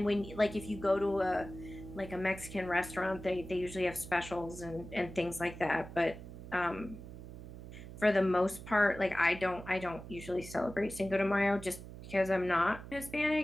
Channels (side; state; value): right; noise; hum, 13 dB below the sound